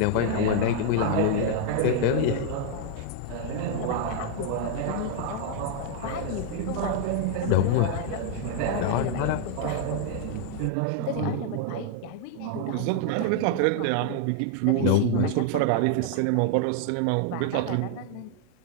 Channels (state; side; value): different; both; correlation 0.00